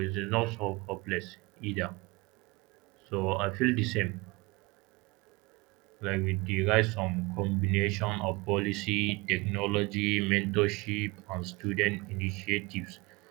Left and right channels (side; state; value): left; quieter; 24.3 dB